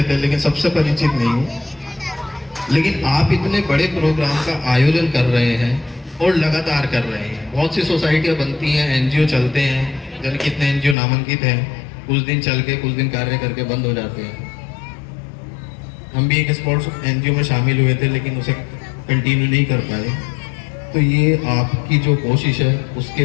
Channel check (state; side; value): drops out; right; at 11.0 s